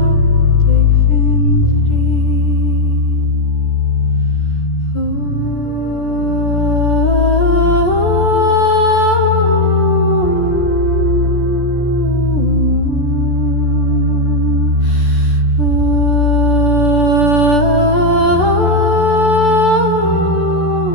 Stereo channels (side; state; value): right; late; 14 ms